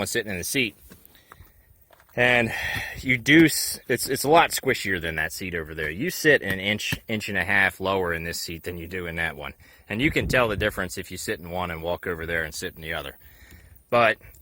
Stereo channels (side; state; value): both; identical; correlation 1.00